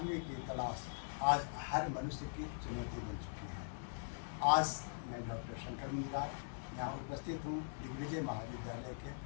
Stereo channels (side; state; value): right; silent; digital silence